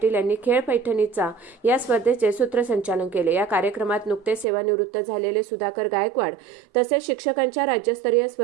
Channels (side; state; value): left; drops out; at 4.5 s